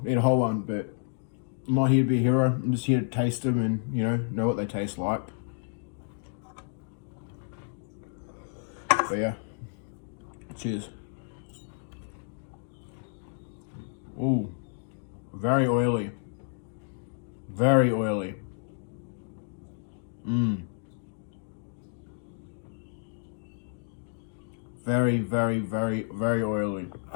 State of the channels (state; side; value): silent; right; digital silence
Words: eat a whole one, but I'm not here to be a hero. I'm just here to taste them and, you know what they taste like. But yeah, cheers. Ooh, very oily. Very oily. Very, very, very, very oily.